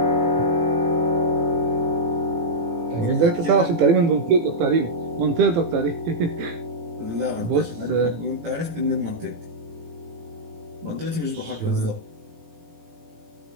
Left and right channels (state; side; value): late; left; 18 ms